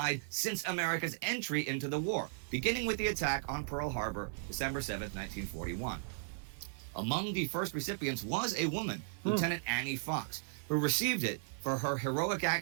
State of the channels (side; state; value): left; silent; digital silence